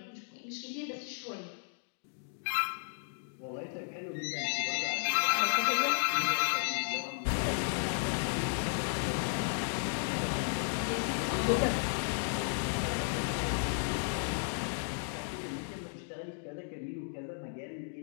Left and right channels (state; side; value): silent; right; digital silence